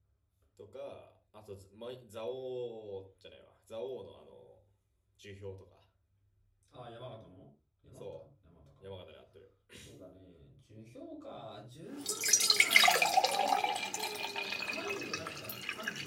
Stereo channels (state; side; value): identical; both; correlation 1.00